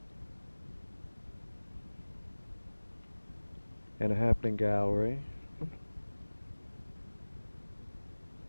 And a happening gallery.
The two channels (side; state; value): both; inverted; correlation -1.00